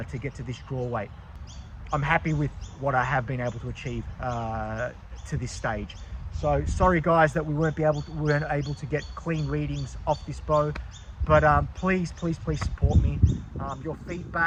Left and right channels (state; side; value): identical; both; correlation 1.00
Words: to get to this draw weight. I'm happy with what I have been able to achieve to this stage. So sorry guys that we weren't able to get clean readings off this bow, but please support me. Your